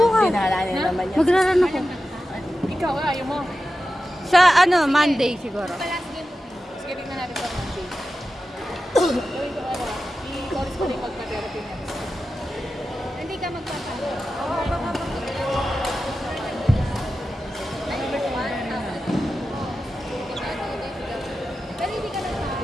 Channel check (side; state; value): both; normal; correlation 0.92